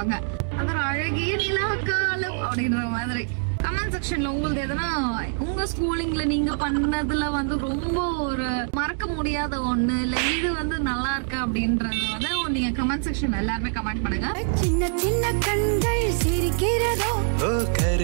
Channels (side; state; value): left; silent; digital silence